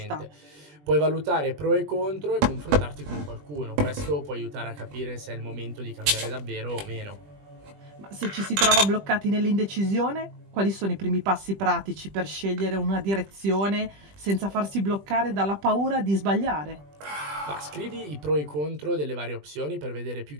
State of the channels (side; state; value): left; late; 20 ms